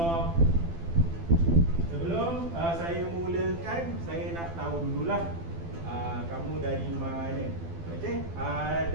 sebelum saya mulakan, saya nak tahu dululah kamu dari mana. Okay.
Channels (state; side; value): late; left; 12 ms